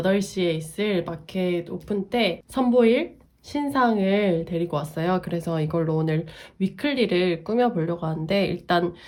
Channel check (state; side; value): identical; both; correlation 1.00